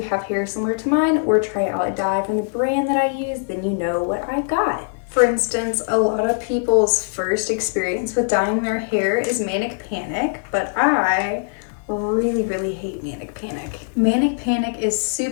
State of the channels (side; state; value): right; silent; digital silence